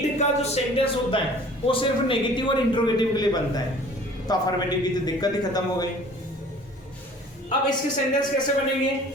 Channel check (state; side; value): normal; both; correlation 0.49